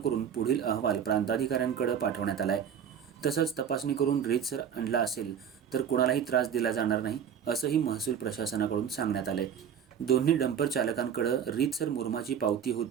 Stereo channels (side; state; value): left; quieter; 8.2 dB